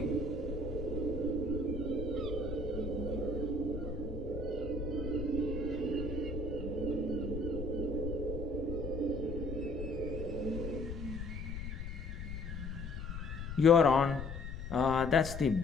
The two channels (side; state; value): left; noise; rumble, 6 dB below the sound